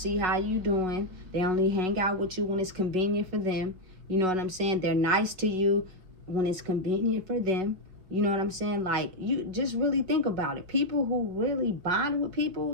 how you doing. They only hang out with you when it's convenient for them. You know what I'm saying? They're nice to you when it's convenient for them. You know what I'm saying? Like, you just really think about it. People who really bond with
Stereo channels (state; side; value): late; left; 5.4 ms